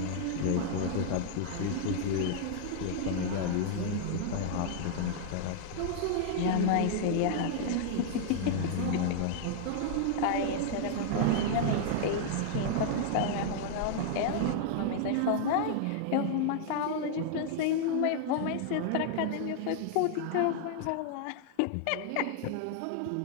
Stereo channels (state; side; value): different; both; correlation -0.01